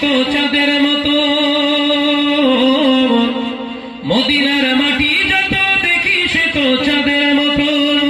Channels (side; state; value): both; identical; correlation 1.00